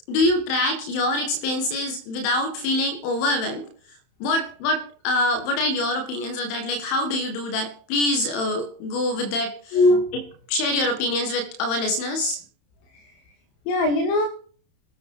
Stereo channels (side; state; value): right; late; 31 ms